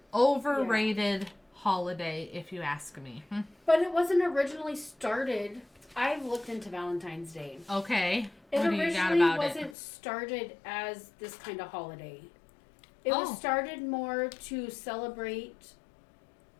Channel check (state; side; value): drops out; right; at 9.8 s